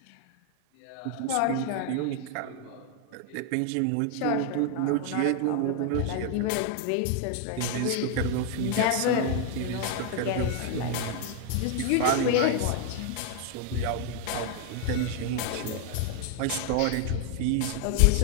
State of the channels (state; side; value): different; both; correlation 0.00